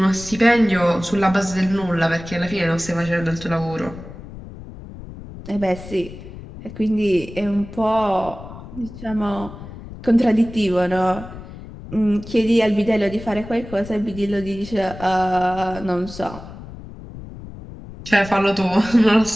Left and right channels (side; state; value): left; noise; rumble, 14 dB below the sound